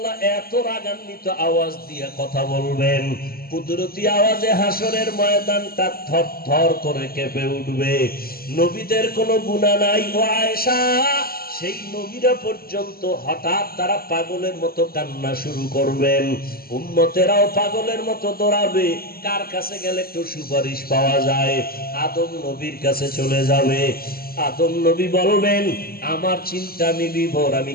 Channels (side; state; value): right; late; 0.44 ms